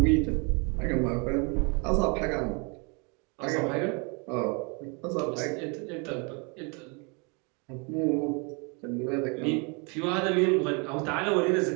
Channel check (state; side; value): quieter; left; 32.8 dB